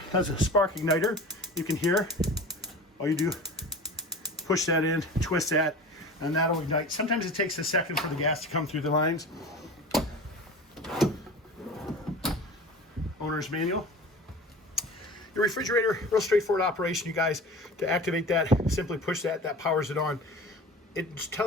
has a spark igniter. You can hear. All you do, push that in, twist that, and that'll ignite. Sometimes it takes a second for the gas to come through the lines. Owner's manual. Your refrigerator, real straightforward operation, you guys. To activate that, simply push that, that powers it on. It's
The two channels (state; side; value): normal; both; correlation 0.37